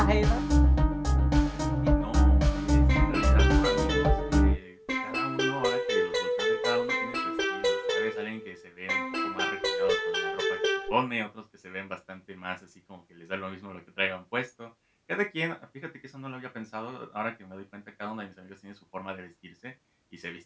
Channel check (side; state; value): both; identical; correlation 1.00